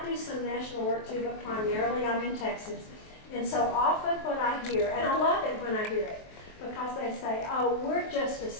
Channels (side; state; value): right; late; 23 ms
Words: do some national work too, but primarily I'm in Texas. And so often what I hear, and I love it when I hear it, because they say, oh, we're just a